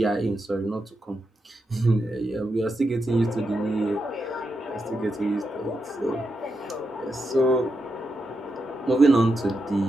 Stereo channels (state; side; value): normal; both; correlation 0.85